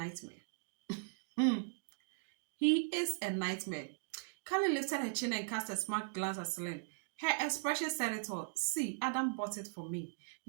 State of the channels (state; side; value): silent; left; digital silence